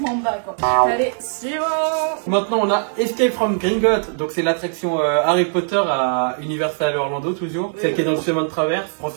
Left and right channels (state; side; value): silent; left; digital silence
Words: Mamba, quoi. Allez, suivant. Maintenant on a Escape from Gringotts, donc c'est l'attraction Harry Potter à Universal Orlando toujours, celle qui est dans le chemin de traverse.